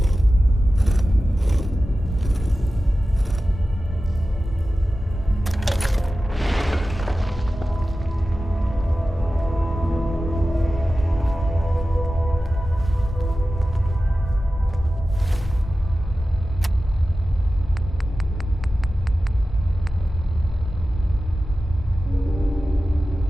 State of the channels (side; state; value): both; normal; correlation 0.94